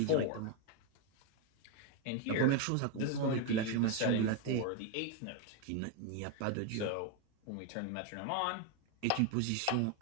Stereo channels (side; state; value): both; different; correlation 0.02